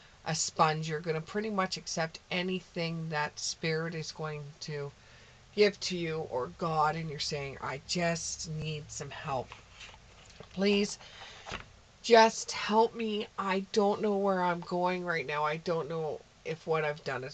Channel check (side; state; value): both; identical; correlation 1.00